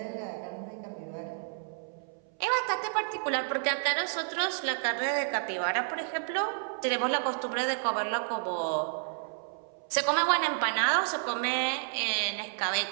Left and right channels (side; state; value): left; silent; 57 dB below the other